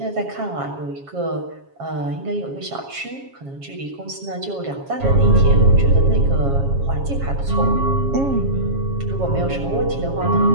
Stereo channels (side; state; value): left; late; 7.3 ms